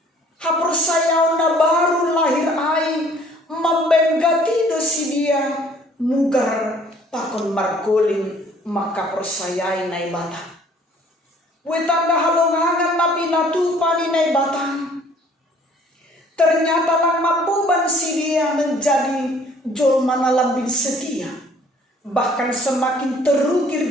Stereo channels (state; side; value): normal; both; correlation 0.57